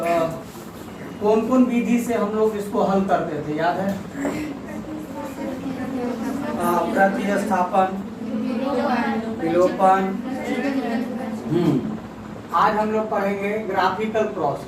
कौन कौन विधि से हम लोग इसको हल करते थे, याद है? प्रतिस्थापन, विलोपन। आज हम लोग पढ़ेंगे ग्राफिकल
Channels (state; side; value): identical; both; correlation 1.00